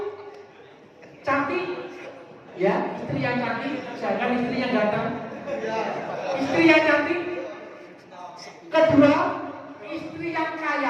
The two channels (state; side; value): identical; both; correlation 1.00